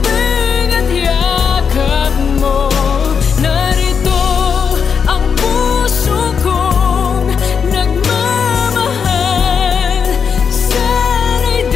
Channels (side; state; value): right; quieter; 6.5 dB